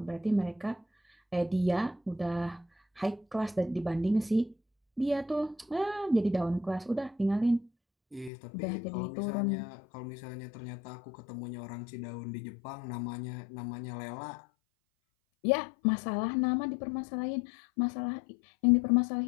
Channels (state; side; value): drops out; right; at 8.3 s